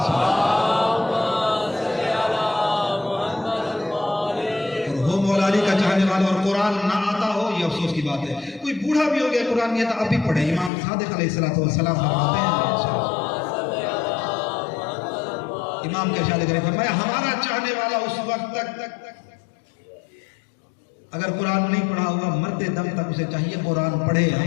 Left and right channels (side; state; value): right; drops out; at 10.7 s